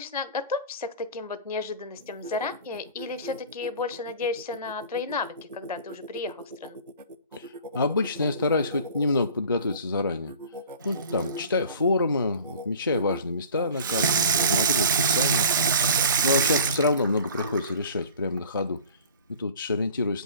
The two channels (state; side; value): inverted; both; correlation -0.44